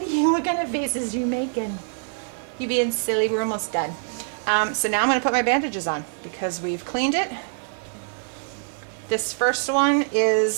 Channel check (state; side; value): silent; left; 62 dB below the other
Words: kind of faces you making? You being silly, we're almost done. So now I'm gonna put my bandages on because we've cleaned it. This first one